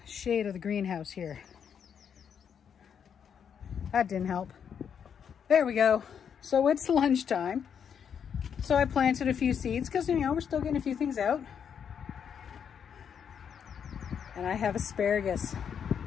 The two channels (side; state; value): right; quieter; 7.7 dB